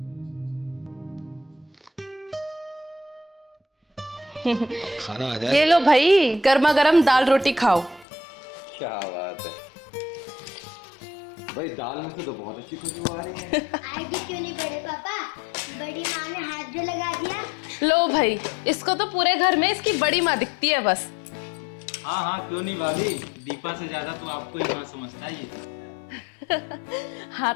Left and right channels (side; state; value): right; drops out; at 8.1 s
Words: अब खाना आ जाए। ये लो भाई, गर्मा गर्म दाल रोटी खाओ। क्या बात है भाई, दाल में से तो बहुत अच्छी खुशबू आ रही है। आएगी क्यों नहीं बड़े पापा, बड़ी माँ ने हाथ जो लगा दिया। लो भाई, इसको तो पूरे घर में इसकी बड़ी माँ दिखती है बस। हाँ हाँ, क्यों नहीं भाभी, दीपा से ज्यादा तो आपको ही माँ समझता है ये।